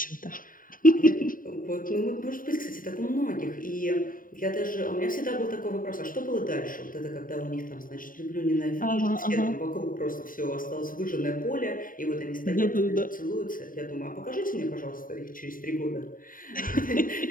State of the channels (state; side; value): late; right; 0.40 ms